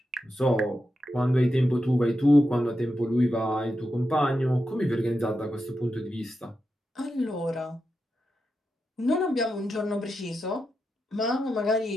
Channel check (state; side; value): normal; both; correlation 0.88